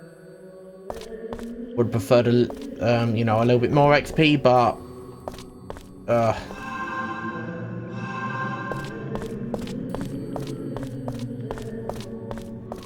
Would prefer to, you know, a little bit more XP, but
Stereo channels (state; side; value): identical; both; correlation 1.00